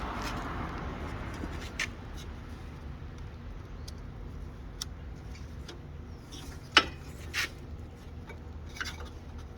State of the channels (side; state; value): both; identical; correlation 1.00